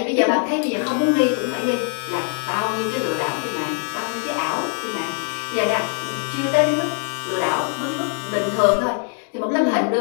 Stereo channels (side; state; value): right; quieter; 39.3 dB